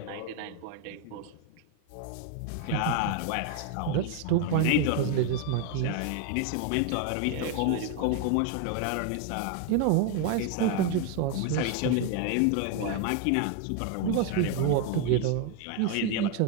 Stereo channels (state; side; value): different; both; correlation 0.01